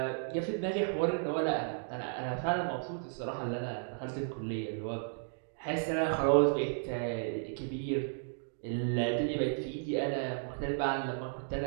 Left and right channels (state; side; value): silent; left; digital silence